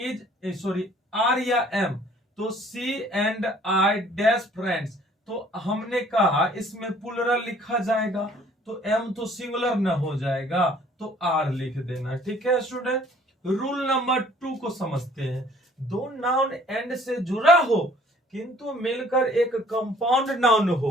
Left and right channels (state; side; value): normal; both; correlation 0.57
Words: सॉरी आर या एम, तो सी एंड आई डैश फ्रेंड्स, तो हमने कहा इसमें प्लूरल लिखा जाएगा, तो एम तो सिंगुलर न हो जाएगा, तो आर लिख देना, ठीक है स्टूडेंट। रूल नंबर 2 को समझते हैं। दो नाउन एंड से जुड़ा हो किंतु मिलकर एक कंपाउंड नाउन